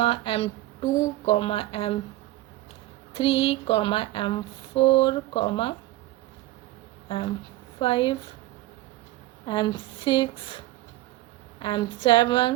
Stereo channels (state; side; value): quieter; left; 16.7 dB